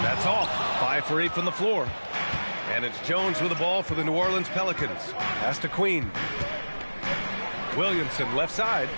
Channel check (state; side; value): inverted; both; correlation -1.00